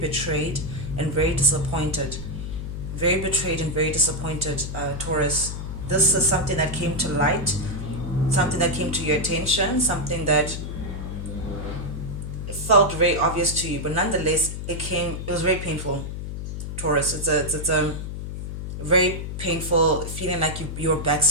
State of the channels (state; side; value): noise; left; hum, 6 dB below the sound